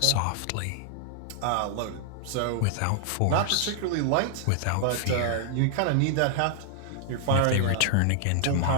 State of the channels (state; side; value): different; both; correlation 0.00